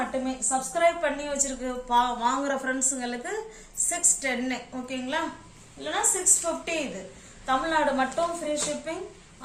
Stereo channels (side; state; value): both; identical; correlation 1.00